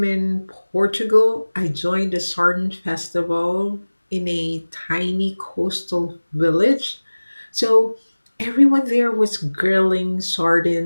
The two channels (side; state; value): both; inverted; correlation -1.00